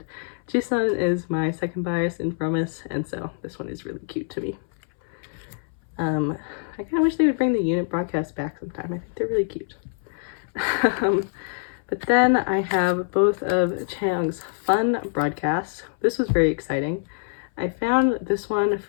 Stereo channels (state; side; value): silent; right; 62 dB below the other